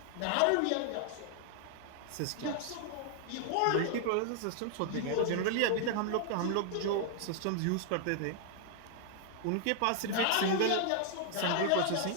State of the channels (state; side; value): different; both; correlation 0.00